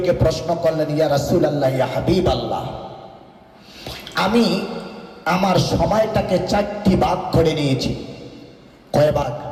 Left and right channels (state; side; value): identical; both; correlation 1.00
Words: প্রশ্ন করলেন, ইয়া রাসূলুল্লাহ, ইয়া হাবিবাল্লাহ, আমি আমার সময়টাকে 4টি ভাগ করে নিয়েছি। কয় ভাগ?